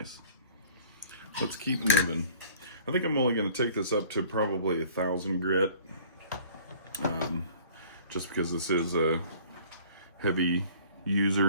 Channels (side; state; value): both; inverted; correlation -0.51